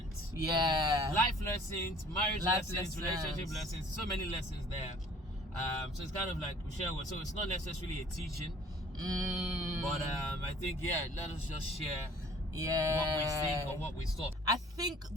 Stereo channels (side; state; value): both; normal; correlation 0.53